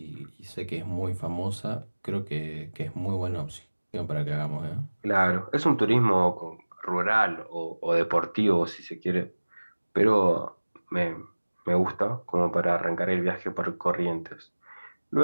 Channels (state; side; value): inverted; both; correlation -1.00